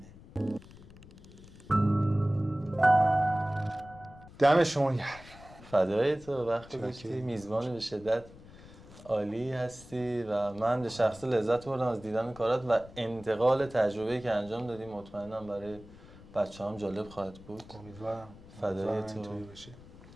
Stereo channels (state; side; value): noise; left; rumble, 19 dB below the sound